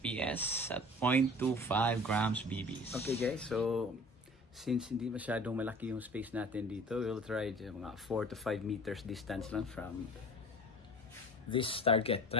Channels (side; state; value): both; normal; correlation 0.43